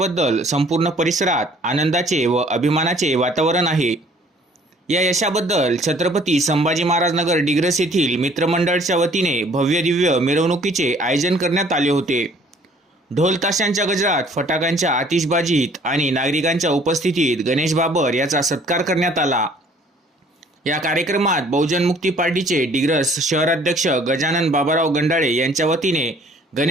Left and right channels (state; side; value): normal; both; correlation 0.56